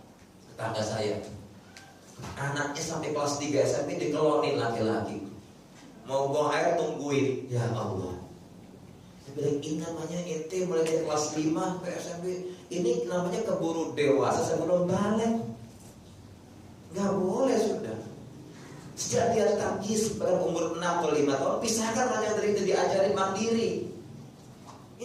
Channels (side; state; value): both; identical; correlation 1.00